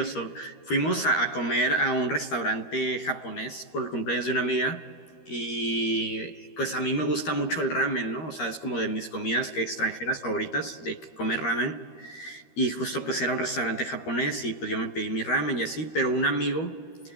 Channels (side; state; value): right; late; 13 ms